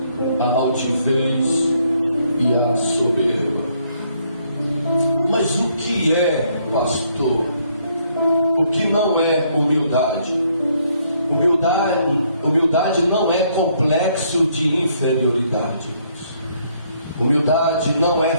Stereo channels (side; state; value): both; inverted; correlation -0.69